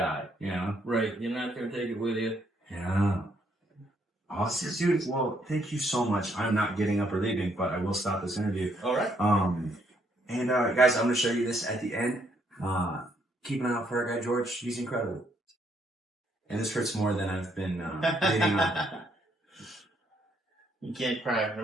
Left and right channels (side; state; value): both; normal; correlation 0.71